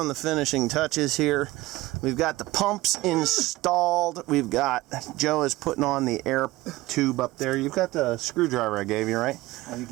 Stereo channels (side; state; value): left; quieter; 18.8 dB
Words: the finishing touches here. We've got the pumps installed. We've got, Joe is putting on the air tube up there. You've got the screwdriver I gave you, right? Oh, you